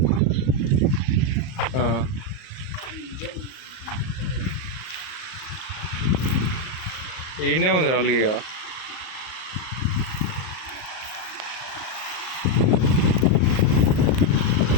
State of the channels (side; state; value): right; late; 38 ms